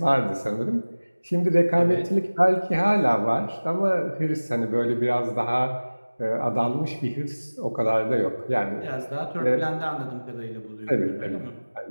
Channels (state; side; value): inverted; both; correlation -1.00